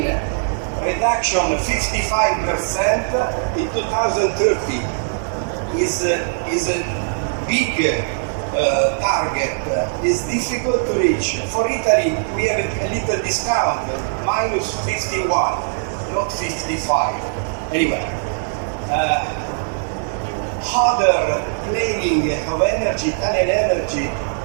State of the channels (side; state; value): left; silent; digital silence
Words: reduction 55% in 2030 is a big target. Is difficult to reach. For Italy, we have a little discount, minus 51, not 55. Anyway, other planning of energy, Italian energy,